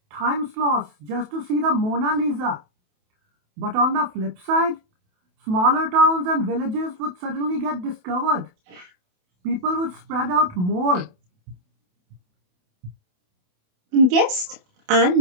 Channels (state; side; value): late; left; 28 ms